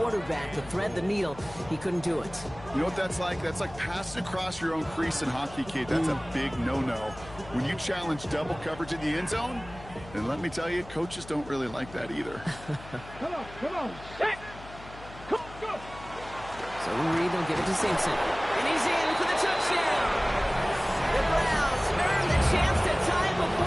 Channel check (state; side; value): noise; left; hum, 17 dB below the sound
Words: to thread the needle. He couldn't do it. You know what that's like? That's like passing across your own crease in hockey, kid. That's a big no-no. When you challenge double coverage in the end zone, and let me tell you, coaches don't really like that either. Come on, set! Go! So Reed will give it to Simpson. And he's in for the touchdown. The Browns earn the chance to tie